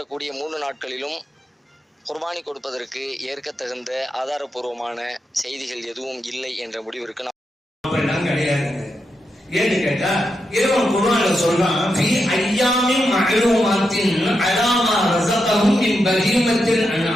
3 நாட்களிலும் குர்பானி கொடுப்பதற்கு ஏற்க தகுந்த ஆதாரபூர்வமான செய்திகள் எதுவும் இல்லை என்ற முடிவிற்கு அப்படிலாம் கிடையாது. ஏன்னு கேட்டா இறைவன் குர்ஆன்ல சொல்றான், ஃபீ அய்யாமின் மஅலூமாத்தின் அலாமா ரஸகஹும் மின் பஹீமத்தில்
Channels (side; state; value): both; normal; correlation 0.85